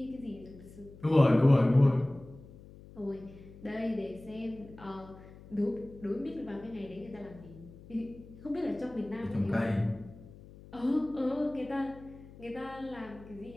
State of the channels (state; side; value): noise; left; hum, 19 dB below the sound